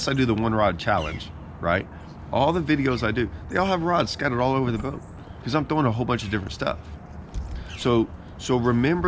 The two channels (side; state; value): both; identical; correlation 1.00